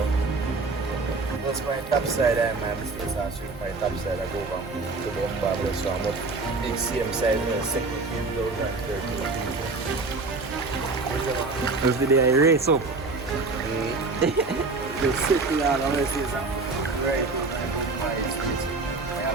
Once my top side I my business I swing my top side I go over to the umbrella so I'm up the same side in the second 2013. That's the day I race up. You sit down, I'm going to say something. Right. I have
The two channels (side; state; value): left; quieter; 3.7 dB